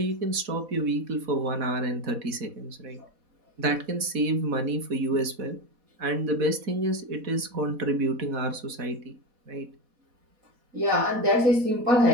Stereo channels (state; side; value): late; left; 4.1 ms